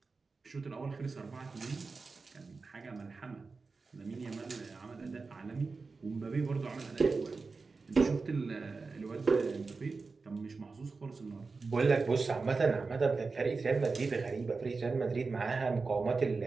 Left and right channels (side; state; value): left; quieter; 4.2 dB